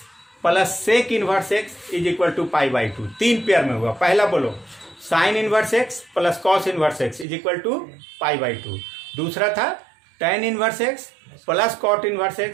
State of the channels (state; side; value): drops out; left; at 7.2 s